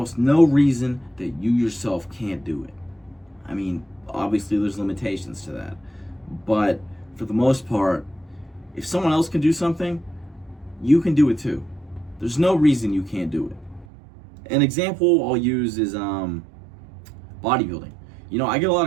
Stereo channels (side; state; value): left; drops out; at 13.9 s